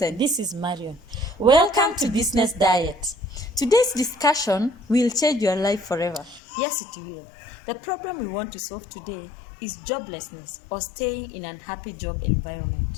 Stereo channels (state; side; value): drops out; right; at 6.4 s